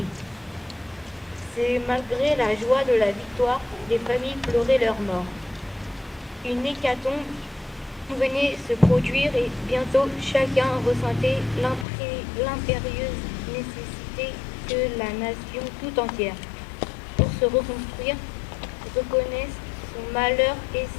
C'est malgré la joie de la victoire, les familles pleuraient leurs morts. Une hécatombe venait se produire et bientôt chacun ressentait l'impérieuse nécessité que la nation tout entière, pour se reconstruire, reconnaisse son malheur et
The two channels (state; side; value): drops out; right; at 11.9 s